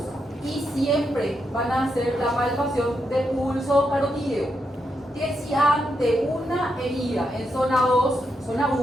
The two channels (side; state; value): both; normal; correlation 0.83